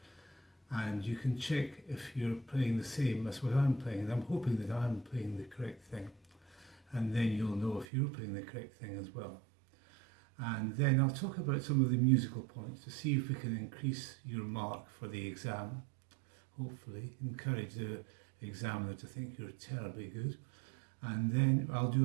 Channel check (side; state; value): left; drops out; at 7.9 s